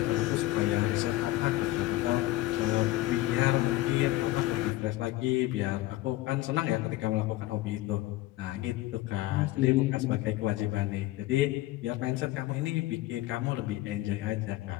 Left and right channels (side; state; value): right; quieter; 17.1 dB